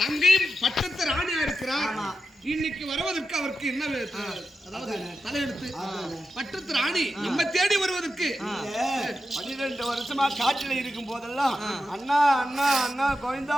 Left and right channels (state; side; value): normal; both; correlation 0.89